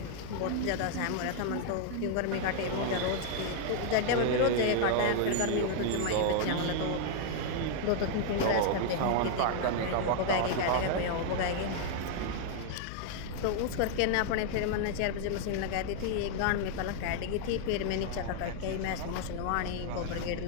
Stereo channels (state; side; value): different; both; correlation 0.00